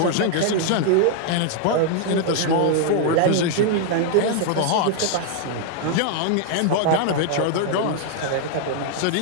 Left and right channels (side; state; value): both; different; correlation 0.00